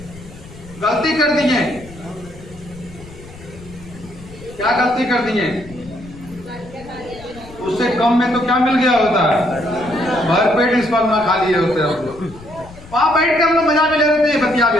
गलती कर दिए। क्या गलती कर दिए? उससे कम में तो क्या मिल गया होता है, भरपेट इस बार ना खा लिए होते हम लोग। वहां बैठ के हम लोग मजा भी ले रहे थे, बतिया भी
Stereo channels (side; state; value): left; noise; rumble, 18 dB below the sound